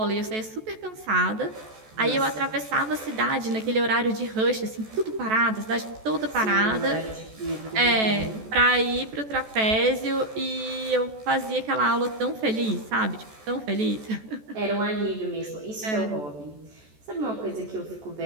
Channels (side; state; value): left; late; 14 ms